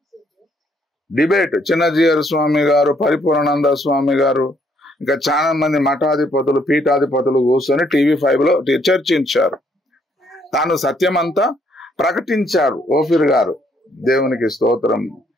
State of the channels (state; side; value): normal; both; correlation 0.69